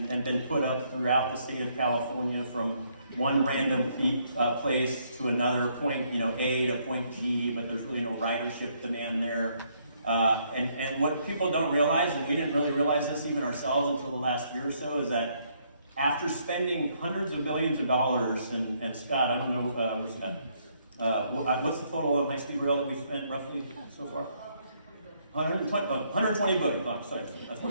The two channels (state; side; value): inverted; both; correlation -0.71